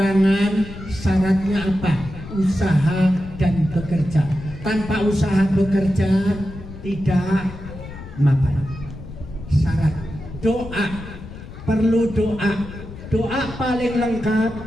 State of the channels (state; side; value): noise; left; rumble, 13 dB below the sound